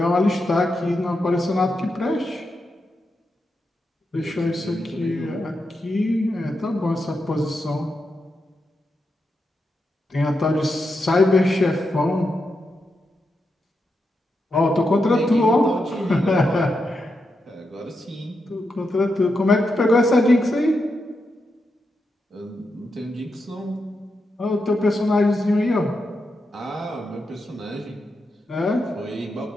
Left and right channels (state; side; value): normal; both; correlation 0.86